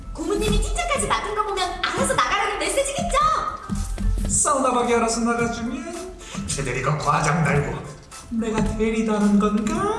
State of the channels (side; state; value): both; identical; correlation 1.00